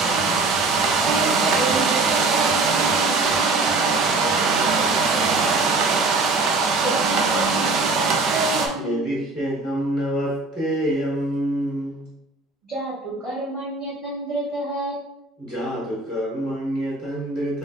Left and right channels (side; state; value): left; quieter; 3.4 dB